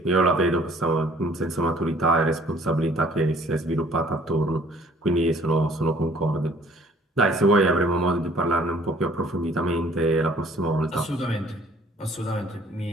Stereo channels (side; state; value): both; normal; correlation 0.57